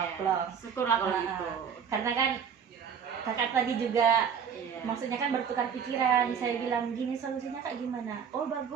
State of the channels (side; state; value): left; quieter; 7.3 dB